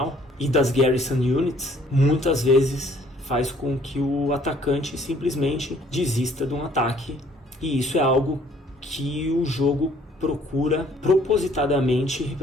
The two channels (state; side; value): normal; both; correlation 0.60